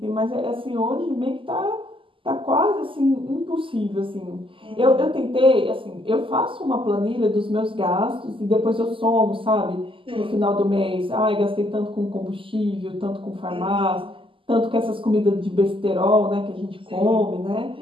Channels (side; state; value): left; late; 0.25 ms